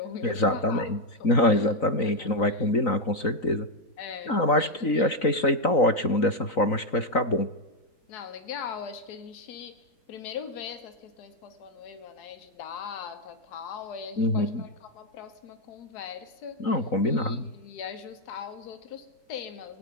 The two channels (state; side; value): late; right; 3.9 ms